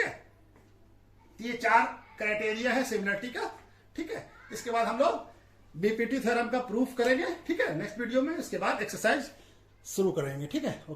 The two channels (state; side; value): identical; both; correlation 1.00